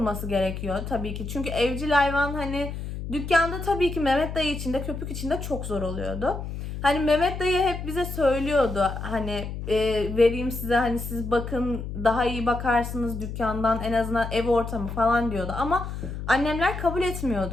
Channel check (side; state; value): left; noise; hum, 7 dB below the sound